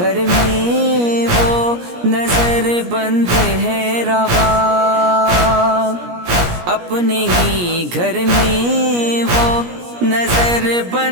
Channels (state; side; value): late; left; 17 ms